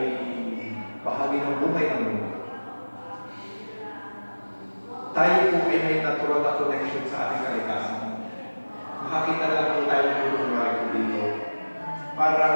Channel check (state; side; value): inverted; both; correlation -1.00